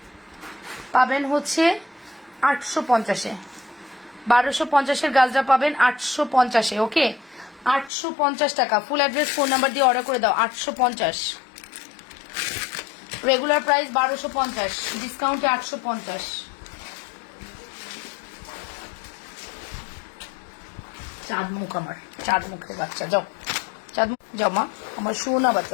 পাবেন হচ্ছে 850-এ। 1250-এর গাছটা পাবেন 850-এ, ওকে? 850 টাকা। ফুল অ্যাড্রেস ফোন নাম্বার দিয়ে অর্ডার করে দাও। 850, রেগুলার প্রাইস 1250, ডিসকাউন্টে 850। চাঁদ মুখ আমার, চাঁদ মুখের বাচ্চা, যাও চাঁদ মুখ যাও মা, আমার সোনা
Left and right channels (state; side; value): drops out; right; at 7.9 s